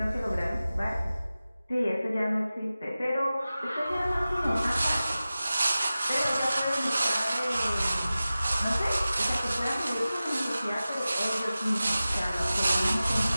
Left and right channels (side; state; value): both; inverted; correlation -0.96